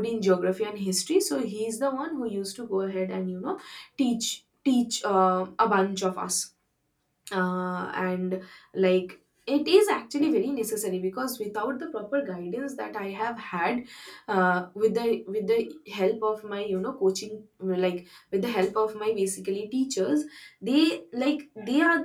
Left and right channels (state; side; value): identical; both; correlation 1.00